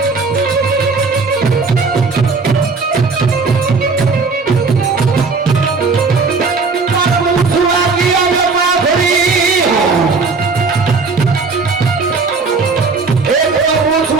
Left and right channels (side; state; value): left; quieter; 4.4 dB